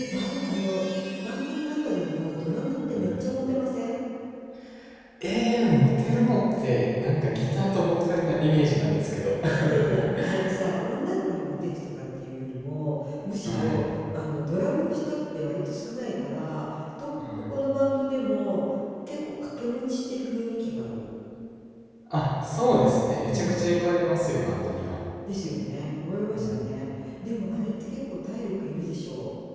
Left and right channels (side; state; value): both; identical; correlation 1.00